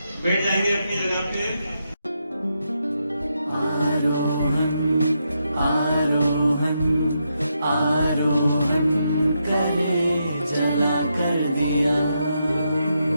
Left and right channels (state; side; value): inverted; both; correlation -0.82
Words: बैठ जाएंगे अपनी जगह पे।